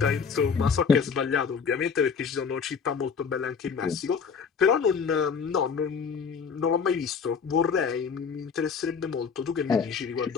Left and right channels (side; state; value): right; quieter; 6.0 dB